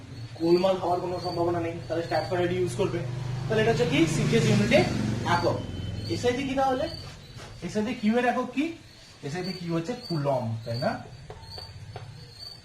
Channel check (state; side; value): identical; both; correlation 1.00